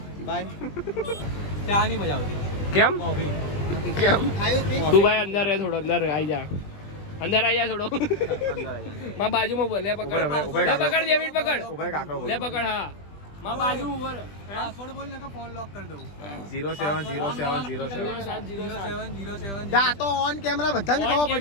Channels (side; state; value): right; late; 20 ms